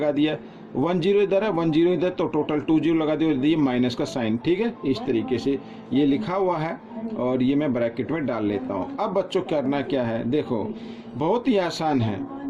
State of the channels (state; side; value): identical; both; correlation 1.00